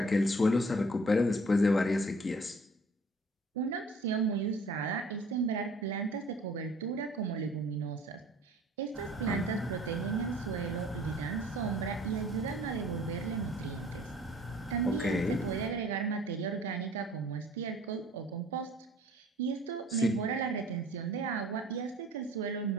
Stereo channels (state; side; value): normal; both; correlation 0.52